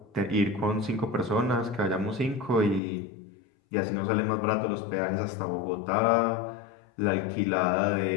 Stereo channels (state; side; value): drops out; right; at 2.8 s